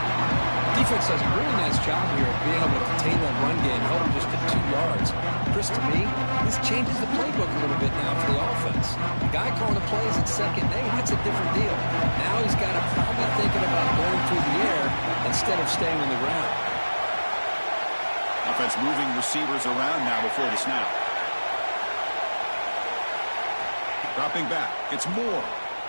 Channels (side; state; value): both; inverted; correlation -1.00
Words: Defense does a really nice job here of being able to contain that run game, held him just to 2 yards. Chris, to me, this changes the playbook a little bit now for the offense. The guy calling the plays at 2nd and 8, that's a different deal. Now he's got to probably thinking about going through the air instead of staying on the ground. Offense moving receivers around now before the snap. Dropping back. It's Moore.